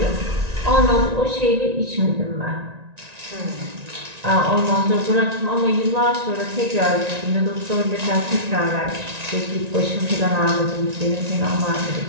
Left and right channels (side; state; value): left; late; 1.9 ms